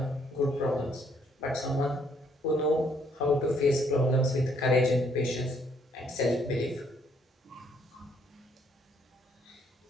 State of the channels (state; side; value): normal; both; correlation 0.68